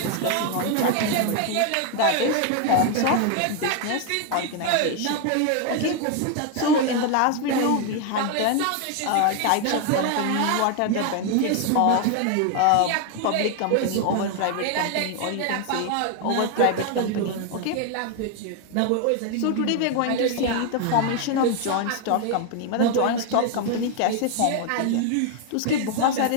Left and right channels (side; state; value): both; different; correlation 0.01